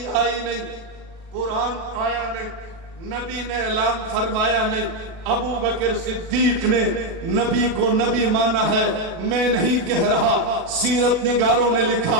آئی نہیں، قرآن آیا نہیں، نبی نے اعلان فرمایا نہیں۔ ابو بکر صدیق نے نبی کو نبی مانا ہے، میں نہیں کہہ رہا، سیرت نگاروں نے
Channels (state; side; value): late; left; 37 ms